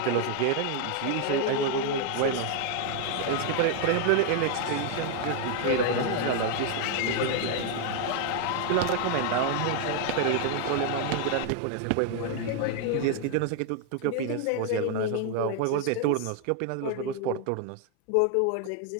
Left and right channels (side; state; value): both; different; correlation 0.00